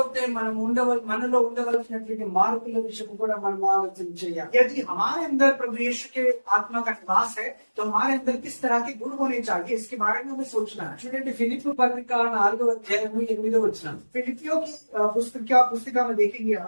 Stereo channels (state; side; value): inverted; both; correlation -1.00